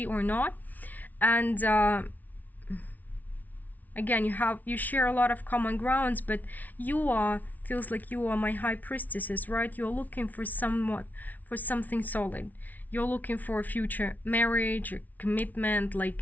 or not. And again, you share a lot of common grounds, but feels like you are my high priestesses, right? You're looking for something solid. You're looking for a future marriage or commitment.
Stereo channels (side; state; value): right; late; 0.077 ms